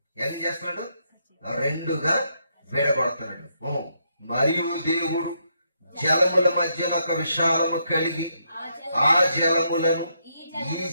ఏం చేస్తున్నాడు? 2గా విడగొడుతున్నాడు. మరియు దేవుడు జలముల మధ్యన ఒక విశాలము కలిగి ఆ జలములను ఈ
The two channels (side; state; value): both; inverted; correlation -0.77